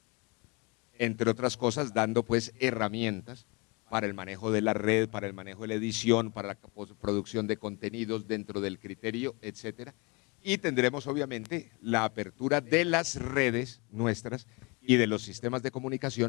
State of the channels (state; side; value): quieter; right; 28.3 dB